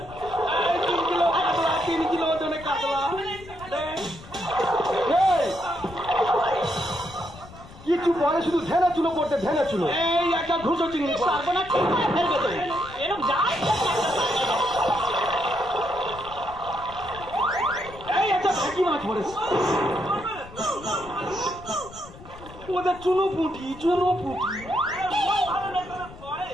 3 কিলো কাতলা, 3 কিলো ওজনে কাতলা। কিছু পরে শুধু ধ্যানা চুলো পড়তে ধ্যানা চুলো। এই একটা ঘুষো চিংড়ি সর্বনাশ ঠিক করে ফেলবে তো। এরকম যায় এই একটা ভেকি মাছ পড়েছে। ওদের চুনো পুঁটি, চুনো পুঁটি।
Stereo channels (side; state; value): left; noise; rumble, 18 dB below the sound